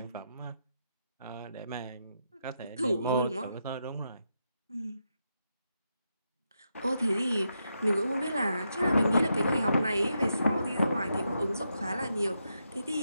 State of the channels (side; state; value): both; inverted; correlation -0.83